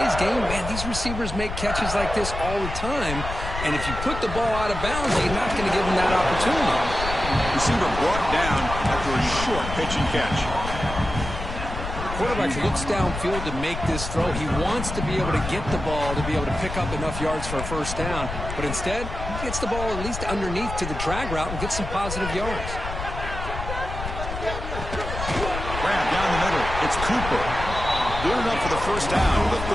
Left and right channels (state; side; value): noise; left; rumble, 7 dB below the sound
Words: game, man, these receivers make catches like this all the time. And if you put the ball out of bounds, you're not going to give them that opportunity. Receiver brought down after a short pitch and catch. Quarterback looks downfield to make this throw. He wants to be able to get the ball to be able to pick up enough yards for a 1st down. But instead, he gets the ball at least underneath to the drag route and gets some positive yards. It's Cooper. Good enough for the first down with